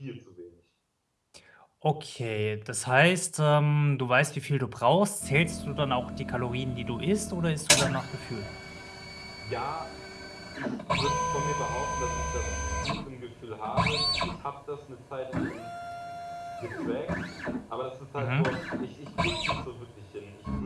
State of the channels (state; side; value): identical; both; correlation 1.00